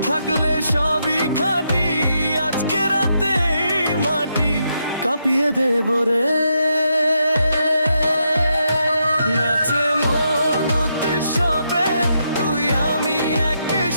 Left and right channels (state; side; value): inverted; both; correlation -0.81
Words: থাকলে সবই খাঁটি। আজকে রাতে এই মাটি কাঁপিয়ে দেব রে। নাচে মন উৎসবে, তুই আমি